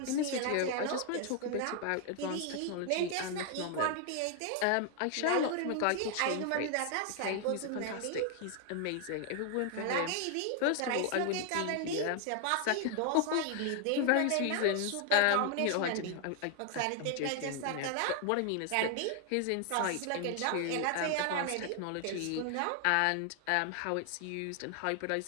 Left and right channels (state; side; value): different; both; correlation 0.00